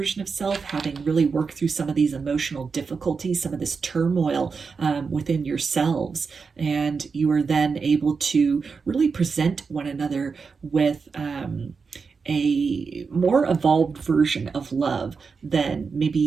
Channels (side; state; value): left; quieter; 5.1 dB